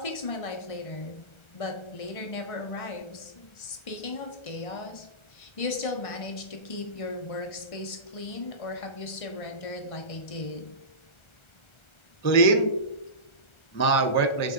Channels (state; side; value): late; right; 1.3 ms